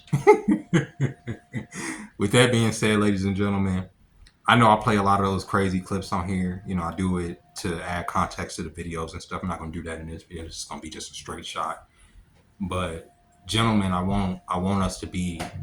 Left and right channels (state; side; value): identical; both; correlation 1.00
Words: With that being said, ladies and gentlemen, I know I play a lot of those crazy clips on here. I do it to add context to the videos and stuff. I'm not going to do that in this video. It's going to be just a straight shot. But gentlemen, I want us to be